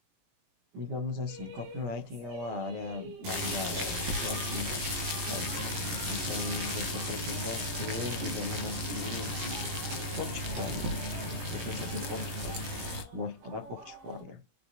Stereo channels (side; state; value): left; late; 18 ms